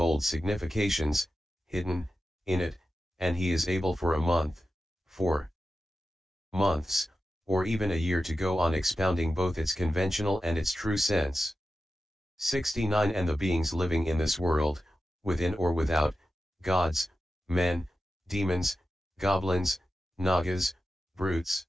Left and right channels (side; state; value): both; normal; correlation 0.92